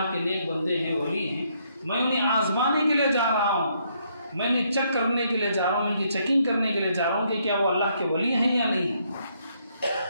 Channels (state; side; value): inverted; both; correlation -0.72